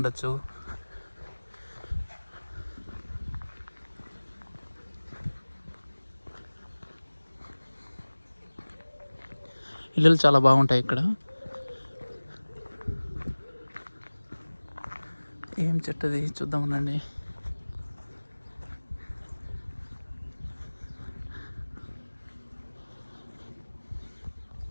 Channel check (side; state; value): both; inverted; correlation -1.00